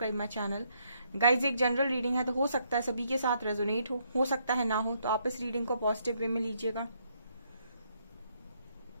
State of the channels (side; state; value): both; inverted; correlation -0.73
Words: my channel. Guys, एक जनरल रीडिंग है तो हो सकता है सभी के साथ रेजोनेट हो सकता है ना हो, तो आप इस रीडिंग को पॉजिटिव वे में लीजिएगा।